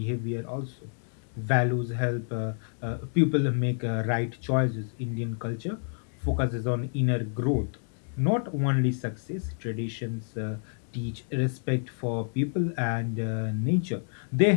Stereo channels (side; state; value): right; silent; 59 dB below the other